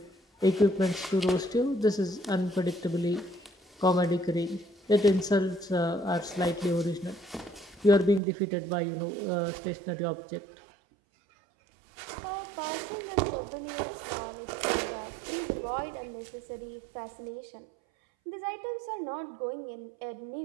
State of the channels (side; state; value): left; drops out; at 8.2 s